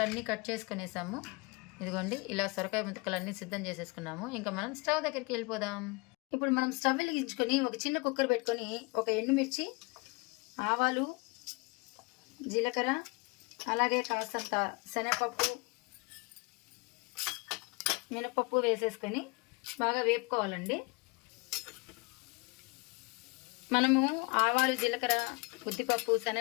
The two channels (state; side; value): quieter; right; 28.5 dB